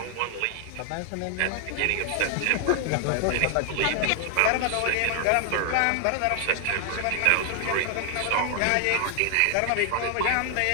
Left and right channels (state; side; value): different; both; correlation 0.00